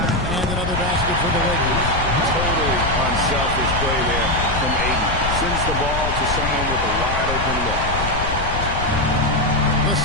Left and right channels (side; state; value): left; noise; rumble, 5 dB below the sound